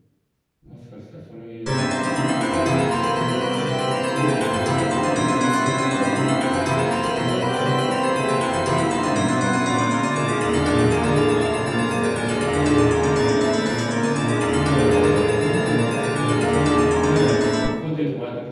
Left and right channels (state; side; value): identical; both; correlation 1.00